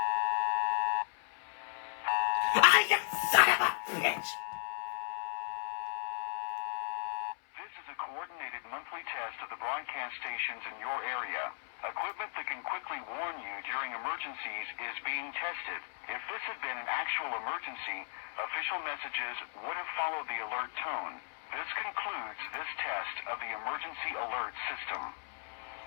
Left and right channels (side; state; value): right; silent; 54 dB below the other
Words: Ah, you son of a bitch! This is a coordinated monthly test of the broadcast stations in your area. Equipment that can quickly warn you during emergencies is being tested. If this had been an actual emergency, official messages would have followed the alert tone. This concludes this test of the emergency alert system.